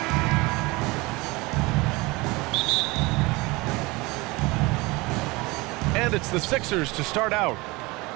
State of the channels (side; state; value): left; quieter; 23.5 dB